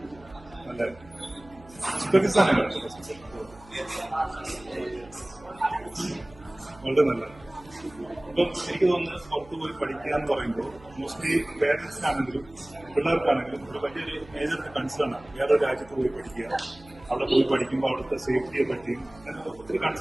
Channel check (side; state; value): right; noise; hum, 23 dB below the sound